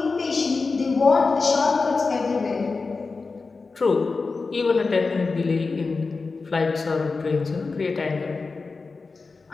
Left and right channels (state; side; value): quieter; right; 4.2 dB